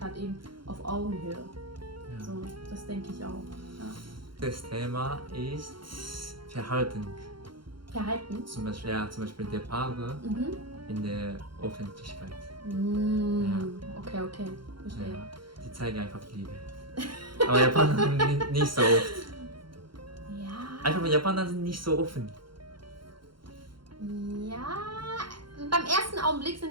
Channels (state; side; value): late; left; 0.73 ms